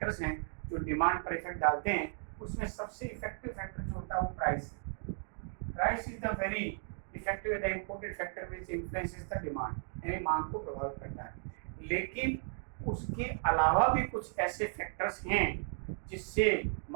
हैं जो डिमांड पर इफेक्ट डालते हैं, उसमें सबसे इफेक्टिव फैक्टर जो होता है वो प्राइस है। Price is the very effective the important factor which influences the demand, यानी मांग को प्रभावित करता है। लेकिन उसके अलावा भी कुछ ऐसे फैक्टर्स हैं जिससे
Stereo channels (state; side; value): silent; left; 54 dB below the other